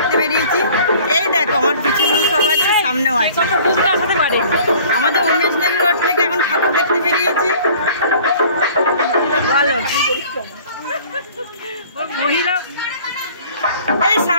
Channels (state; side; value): inverted; both; correlation -0.50